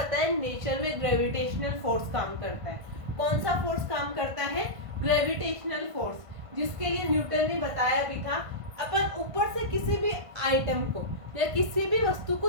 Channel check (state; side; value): late; left; 1.5 ms